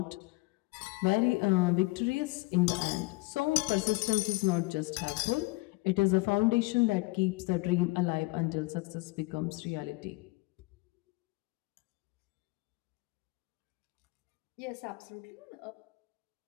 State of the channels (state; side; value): quieter; right; 24.8 dB